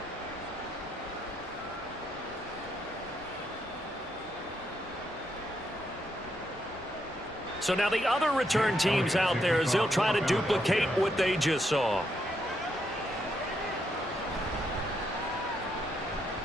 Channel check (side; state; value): both; normal; correlation 0.78